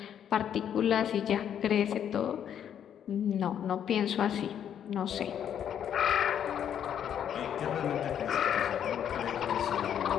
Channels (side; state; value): right; quieter; 9.2 dB